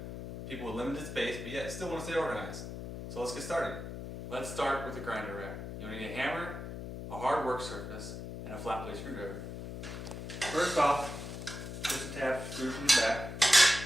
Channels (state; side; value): noise; left; hum, 8 dB below the sound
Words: people with limited space, but yet still want to stay organized. So let's get started. Let's start with the grinder rack. You'll need a hammer, a hard work surface, and a flat blade screwdriver. First off, push the tab screw from the back.